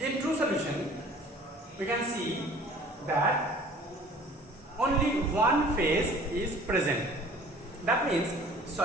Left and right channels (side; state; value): both; normal; correlation 0.49